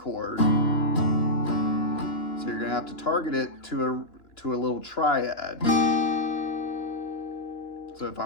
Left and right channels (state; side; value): late; right; 2.9 ms